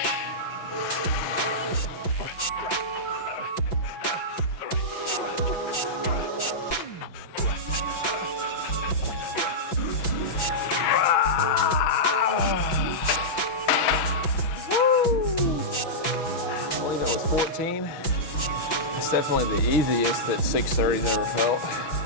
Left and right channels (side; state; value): right; late; 6.0 ms